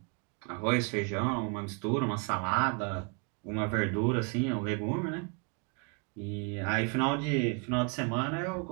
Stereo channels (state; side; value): quieter; left; 34.6 dB